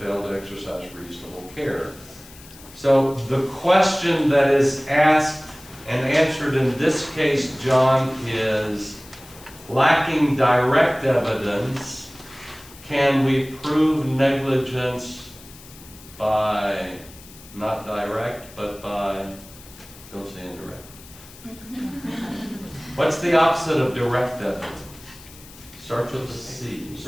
to exercise reasonable care. So the question that is asked and answered in this case, John, is lacking direct evidence, can we prove negligence by, not direct, but by, don't say indirect. What's the opposite of direct evidence? Starts with a C.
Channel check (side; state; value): left; noise; hiss, 20 dB below the sound